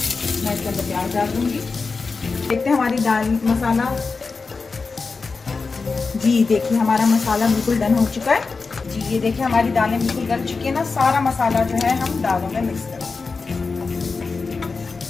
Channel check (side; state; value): right; quieter; 4.4 dB